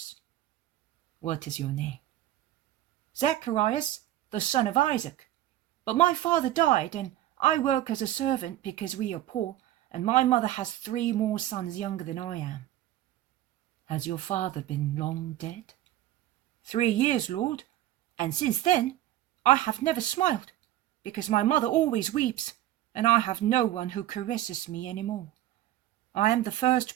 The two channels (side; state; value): left; quieter; 13.9 dB